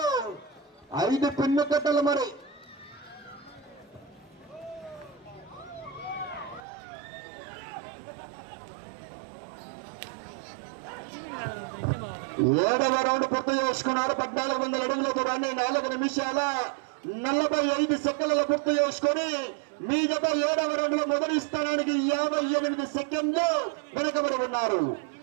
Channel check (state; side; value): drops out; left; at 6.6 s